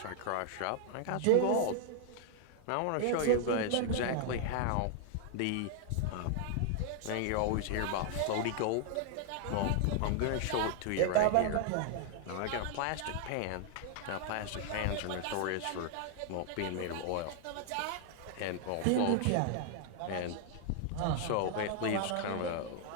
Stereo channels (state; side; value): different; both; correlation 0.00